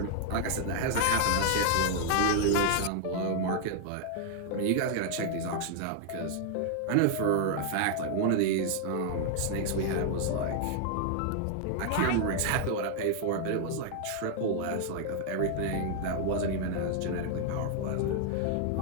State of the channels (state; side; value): different; both; correlation 0.00